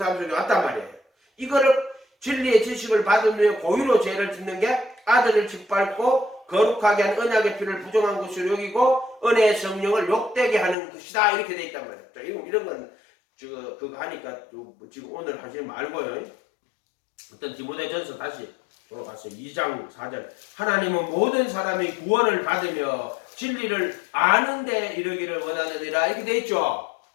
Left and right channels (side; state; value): right; drops out; at 10.8 s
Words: 속에 왔단 말이에요. 이거를 진리의 지식을 받은 후에 고의로 죄를 짓는 게 아들을 짓밟고 거룩하게 한 언약의 피를 부정한 것으로 여기고 은혜의 성령을 욕되게 하는 것이다. 이렇게 돼 있단 말이에요. 자, 이런 건 그거 하니까 지금 오늘 하지 말고요. 어떤 디모데전서 다시 돌아가서 2장 4절. 하나님은 모든 사람이 구원을 받으며 진리를 아는 데 이르기를 원하느니라. 이렇게 돼 있죠.